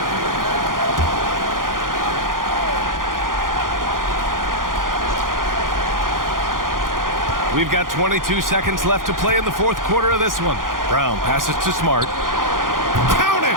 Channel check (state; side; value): late; left; 0.90 ms